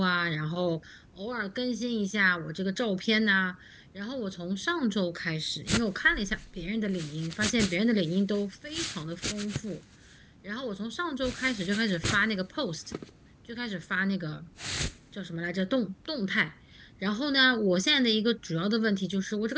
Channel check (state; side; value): identical; both; correlation 1.00